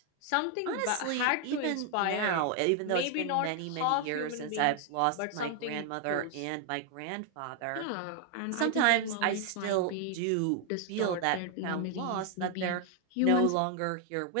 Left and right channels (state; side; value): different; both; correlation 0.00